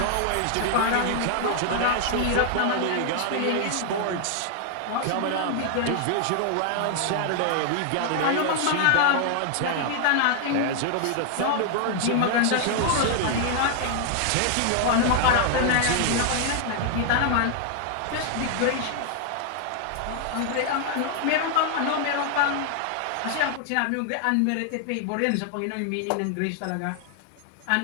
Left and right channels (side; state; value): both; different; correlation 0.00